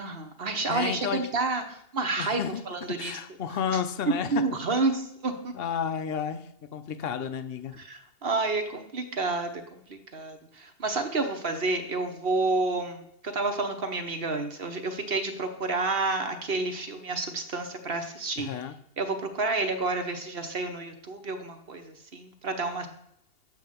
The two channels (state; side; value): late; left; 2.8 ms